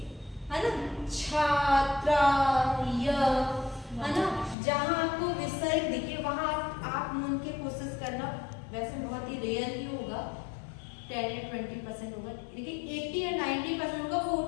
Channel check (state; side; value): drops out; right; at 4.5 s